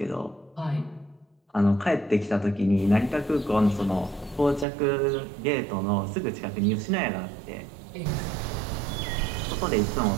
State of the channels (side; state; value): left; drops out; at 4.7 s